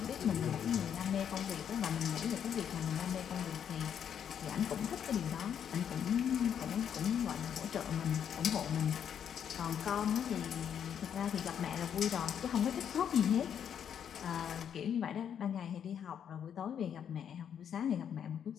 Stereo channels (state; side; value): quieter; right; 8.6 dB